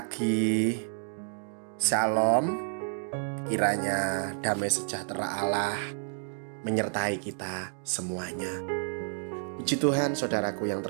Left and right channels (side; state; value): left; silent; 58 dB below the other